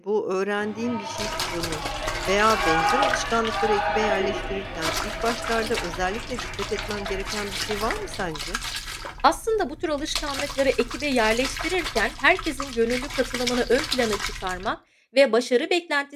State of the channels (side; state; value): both; identical; correlation 1.00